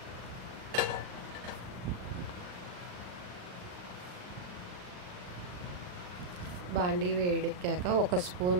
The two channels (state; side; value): late; left; 39 ms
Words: బాండీ వేడెక్కాక ఒక